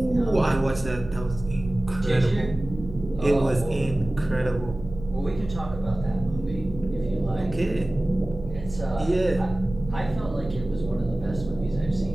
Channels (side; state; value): right; noise; hum, 12 dB below the sound